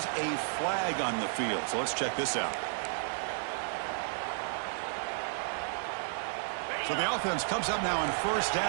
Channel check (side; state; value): left; silent; digital silence